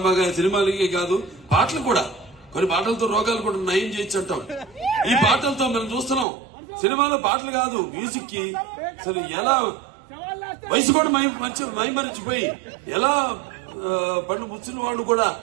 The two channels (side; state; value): left; drops out; at 6.2 s